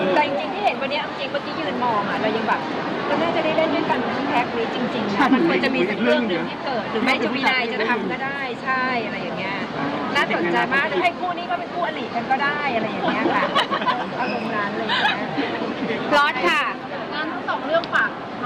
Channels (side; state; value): both; identical; correlation 1.00